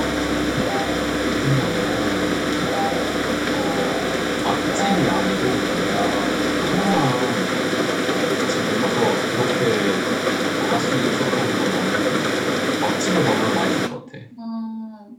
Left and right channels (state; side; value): identical; both; correlation 1.00